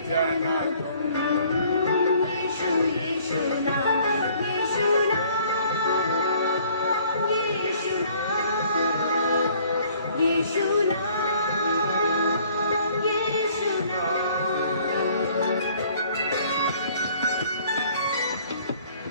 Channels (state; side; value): inverted; both; correlation -0.58